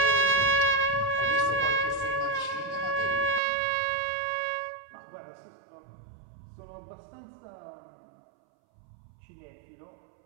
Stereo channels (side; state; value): left; drops out; at 3.4 s